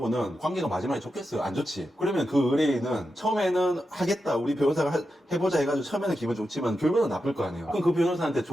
관계가 마지막에 좋겠어요? 안 좋지. 그러면 그 의뢰인은 처음에는 하겠다 우리 변호사가 해보자 해가지고 처음에는 기분 좋지만 결과는 나쁠 거 아니에요. 그럼 그 변호사한테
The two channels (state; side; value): normal; both; correlation 0.89